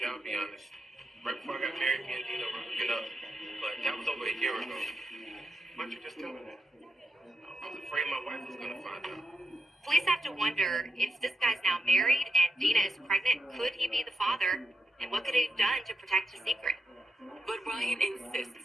I'll be honest. Right before I got married, me and Dina were hooking up. But that was over a year ago. Why don't you just tell me that? I was afraid my wife was going to find out. Police have to wonder if this guy's now married and Dina is pregnant, could he be the father? And what could he have done to protect his secret? But Ryan insists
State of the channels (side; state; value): both; normal; correlation 0.85